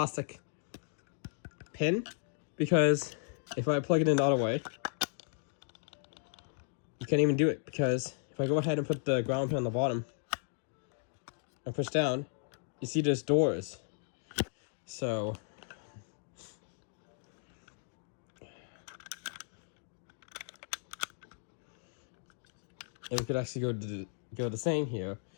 pin, because if I plug it in the other way, you can't even do it, because if I go ahead and put the ground pin on the bottom and push down, you see there's doors. So and we could actually go the same here,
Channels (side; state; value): right; silent; digital silence